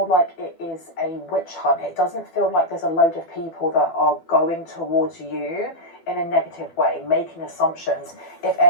like it is a witch hunt. It doesn't feel like there's a load of people that are going towards you in a negative way, making assumptions. If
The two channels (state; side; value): late; right; 12 ms